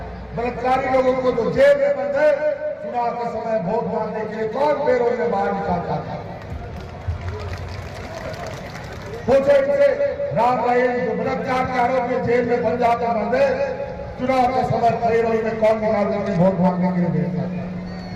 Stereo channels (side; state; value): both; identical; correlation 1.00